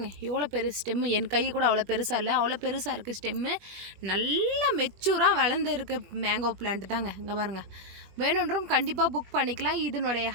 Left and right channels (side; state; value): left; late; 21 ms